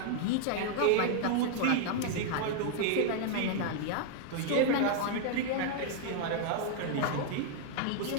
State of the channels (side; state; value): both; different; correlation 0.00